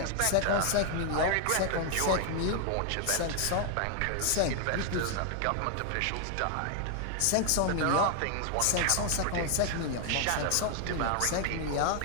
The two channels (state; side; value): different; both; correlation 0.00